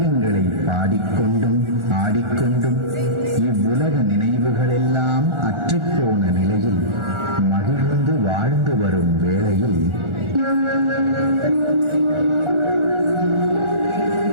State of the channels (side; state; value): left; late; 1.4 ms